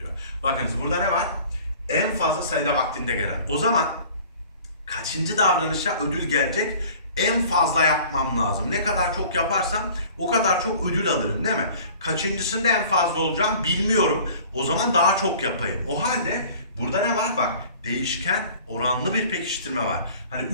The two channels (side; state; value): both; inverted; correlation -0.47